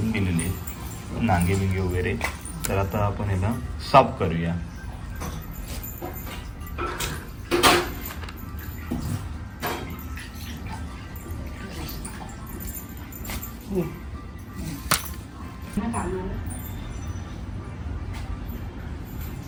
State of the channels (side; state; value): both; identical; correlation 1.00